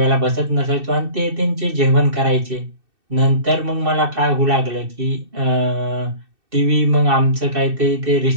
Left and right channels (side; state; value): left; late; 2.6 ms